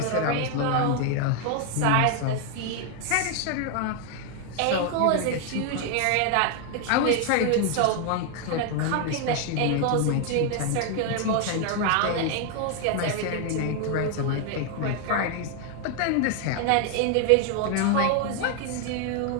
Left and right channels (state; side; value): different; both; correlation 0.01